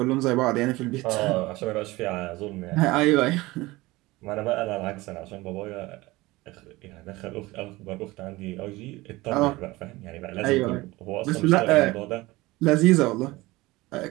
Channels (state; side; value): quieter; left; 20.4 dB